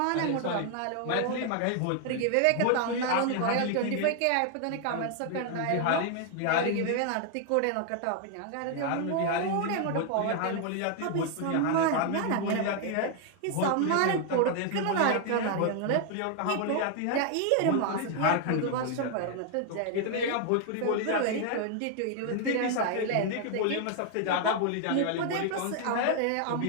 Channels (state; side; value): different; both; correlation 0.00